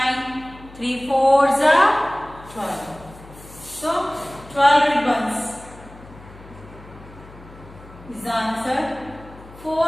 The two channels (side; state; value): left; noise; hum, 20 dB below the sound